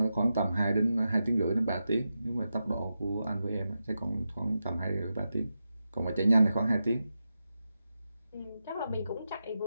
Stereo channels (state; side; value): inverted; both; correlation -0.89